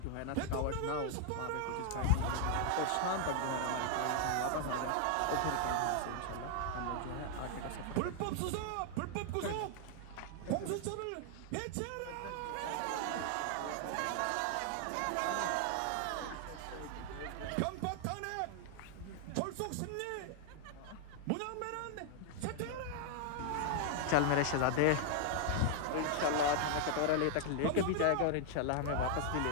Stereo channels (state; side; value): different; both; correlation 0.00